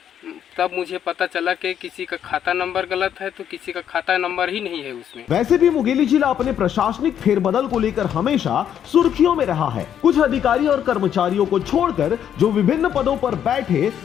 तब मुझे पता चला कि किसी का खाता नंबर गलत है तो किसी का खाता नंबर ही नहीं है उसमें। वैसे भी मुंगेली जिला अपने प्रशासनिक फेरबदल को लेकर हमेशा सुर्खियों में रहा है। कुछ अधिकारी और कर्मचारियों को छोड़कर जो विभिन्न पदों पर बैठे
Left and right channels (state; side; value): quieter; right; 9.4 dB